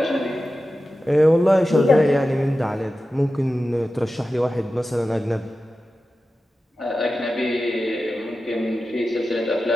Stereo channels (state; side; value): normal; both; correlation 0.93